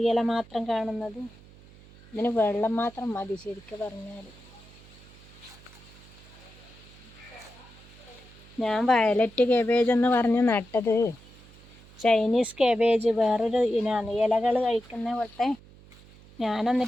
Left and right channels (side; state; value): right; noise; hum, 23 dB below the sound